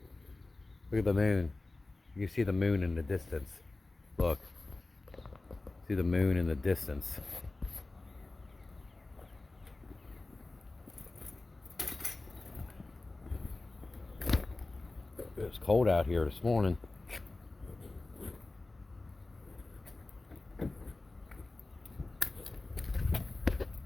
Look at the moon. You see the moon in the distance. Look. See the moon in the distance. It was cold out here this morning.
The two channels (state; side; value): quieter; right; 3.2 dB